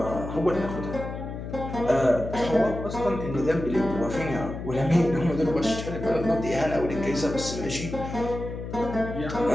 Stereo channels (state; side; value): noise; left; hum, 8 dB below the sound